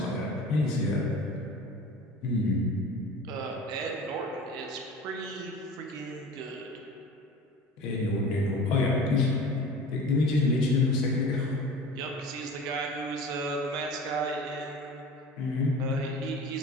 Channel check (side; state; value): both; normal; correlation 0.38